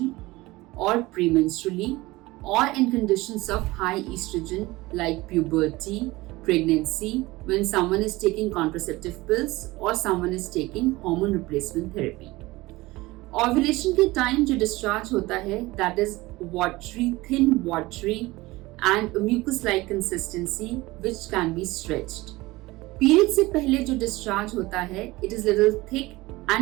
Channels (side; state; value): left; quieter; 20.3 dB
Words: or premenstrually, or in conditions of high estrogen like puberty, pregnancy, when someone is taking contraceptive pills or someone is taking hormone replacement therapy. Ovulation के time जो discharge होता है, that is watery, thin watery and mucus-like consistency which can be stretched. Period से पहले जो discharge होता है it is little thick